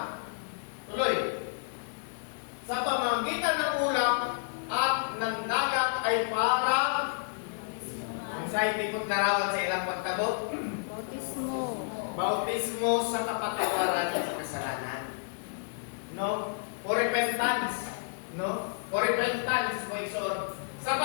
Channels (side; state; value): right; silent; digital silence